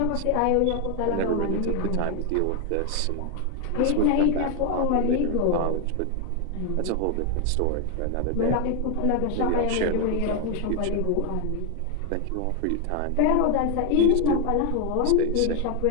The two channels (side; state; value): both; different; correlation 0.01